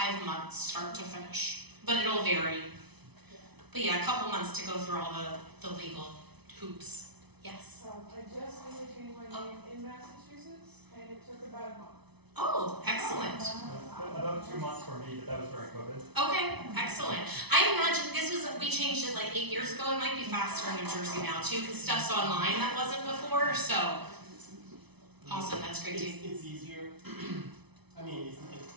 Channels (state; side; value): late; left; 0.99 ms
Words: months, start to finish. But it'll vary. But yeah, a couple months to go through all the legal hoops. Yes? I just really changed my name in Massachusetts, and it took about a month. Oh, excellent. About 2 months for me, but that was during COVID. Okay, excellent. I imagine we changed it like 8 years ago. It might be faster in New Jersey now too, because stuff's online that wasn't before, so awesome, that's great too. It's easier. I mean,